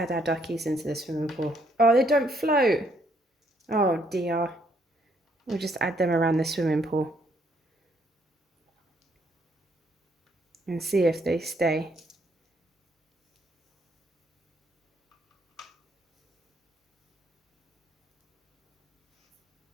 our duckies into the swimming pool. Oh, they don't float. Oh dear. We'll just add them around the swimming pool. And see if they stay.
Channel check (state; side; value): normal; both; correlation 0.70